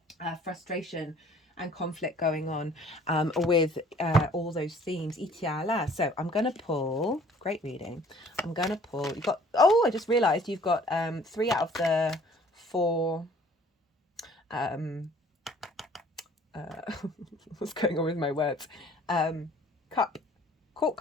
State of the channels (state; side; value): normal; both; correlation 0.55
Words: frustration and conflict going on with all those themes. Itiala. So I'm going to pull, great reading. I'm going to pull, you've got, oh, I just realized you've got 3 out of the 4, what's going on with my words? Court